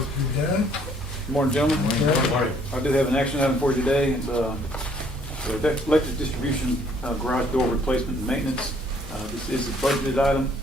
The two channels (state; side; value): normal; both; correlation 0.62